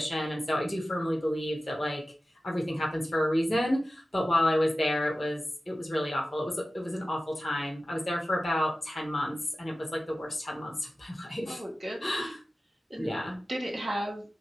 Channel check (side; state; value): both; normal; correlation 0.95